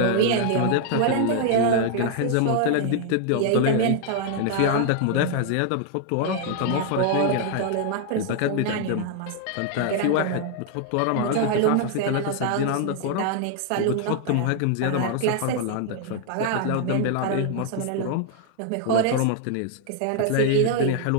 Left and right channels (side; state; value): both; different; correlation 0.00